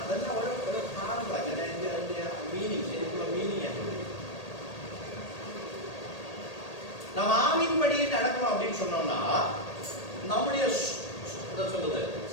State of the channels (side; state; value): right; late; 1.8 ms